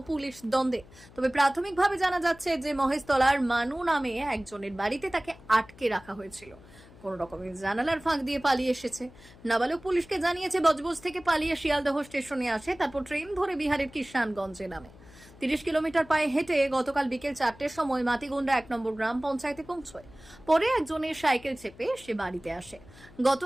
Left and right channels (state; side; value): noise; left; hum, 22 dB below the sound